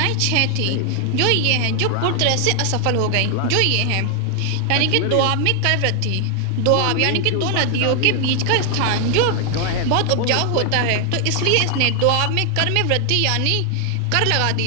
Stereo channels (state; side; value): different; both; correlation 0.00